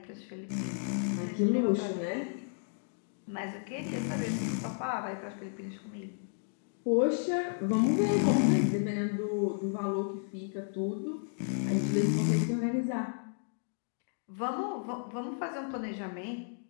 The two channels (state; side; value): silent; right; digital silence